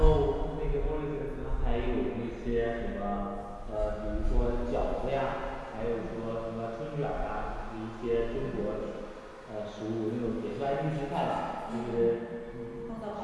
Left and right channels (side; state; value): both; identical; correlation 1.00